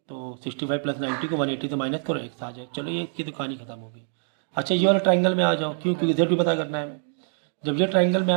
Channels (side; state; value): left; silent; digital silence